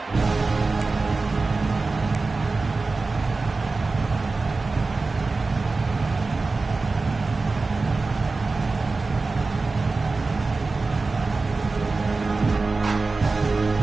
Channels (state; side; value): quieter; left; 3.8 dB